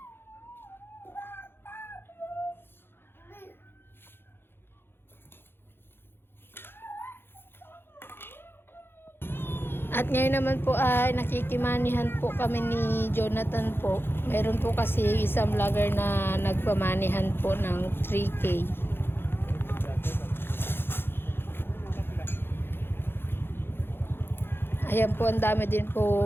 At ngayon naman po ay nakikimanihan po kami ni Jonathan po. Meron po kasi isang vlogger na nagpamanihan po ng 3K. Ayan po, ang dami din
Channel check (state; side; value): late; right; 0.11 ms